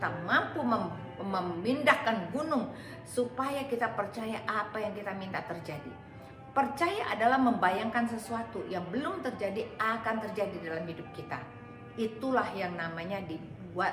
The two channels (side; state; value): both; identical; correlation 1.00